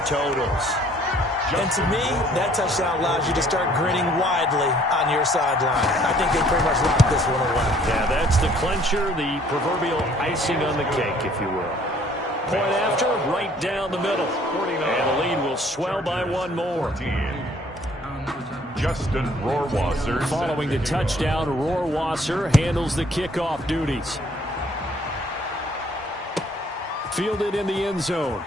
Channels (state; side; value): normal; both; correlation 0.59